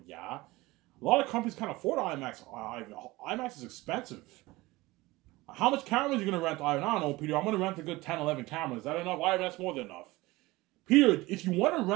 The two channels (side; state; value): left; quieter; 20.4 dB